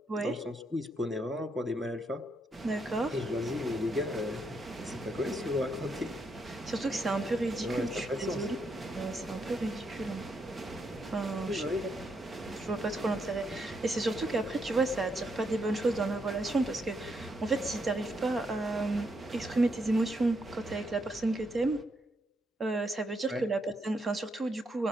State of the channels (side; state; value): both; normal; correlation 0.78